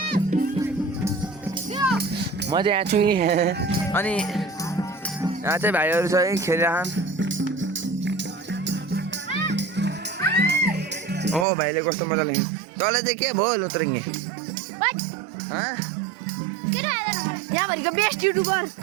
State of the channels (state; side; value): drops out; left; at 11.5 s